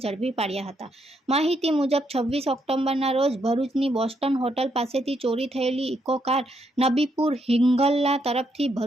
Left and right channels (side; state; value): both; normal; correlation 0.76